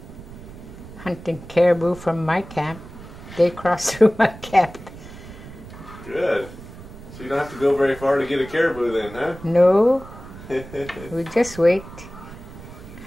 hunting caribou from my camp. They cross through my camp. Good. So you don't have to go very far to get a caribou then, huh? No, we just wait.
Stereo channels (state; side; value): noise; right; rumble, 16 dB below the sound